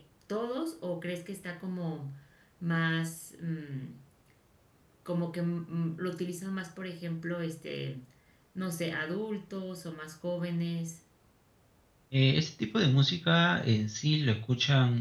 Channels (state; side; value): identical; both; correlation 1.00